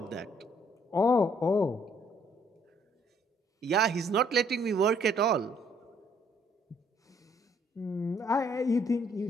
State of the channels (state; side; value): normal; both; correlation 0.65